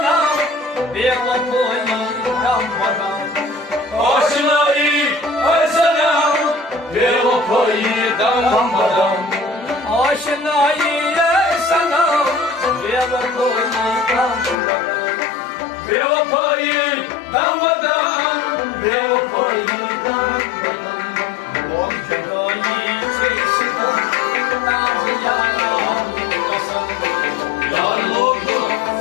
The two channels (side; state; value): right; drops out; at 14.6 s